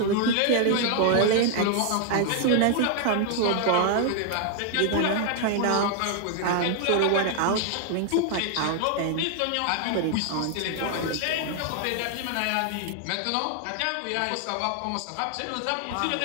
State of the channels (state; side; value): different; both; correlation 0.00